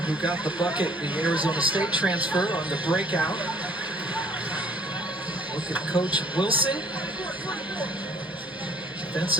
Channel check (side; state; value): both; normal; correlation 0.57